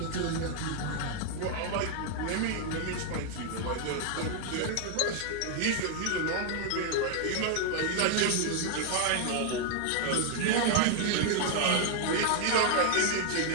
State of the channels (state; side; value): different; both; correlation 0.00